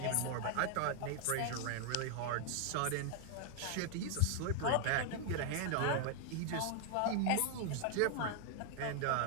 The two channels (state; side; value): different; both; correlation 0.00